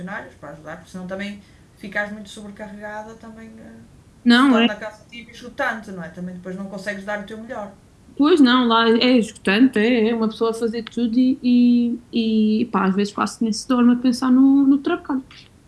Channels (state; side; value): identical; both; correlation 1.00